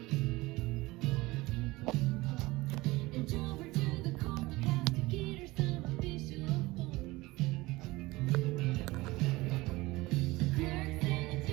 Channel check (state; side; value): quieter; left; 20.6 dB